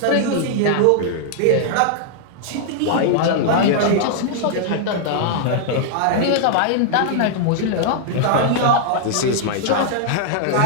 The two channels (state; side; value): different; both; correlation -0.01